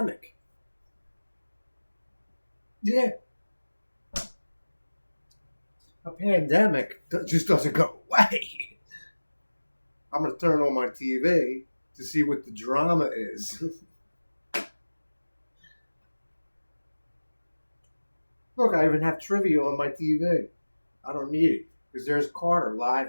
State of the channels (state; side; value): inverted; both; correlation -1.00